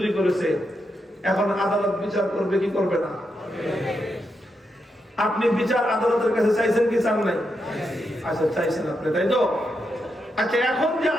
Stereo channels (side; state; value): both; normal; correlation 0.83